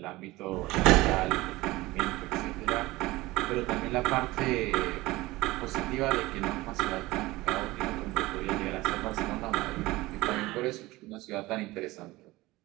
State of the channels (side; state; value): left; quieter; 19.6 dB